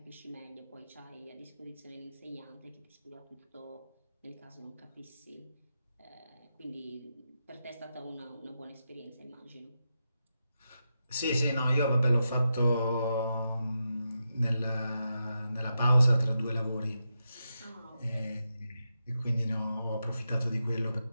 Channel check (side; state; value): both; inverted; correlation -0.87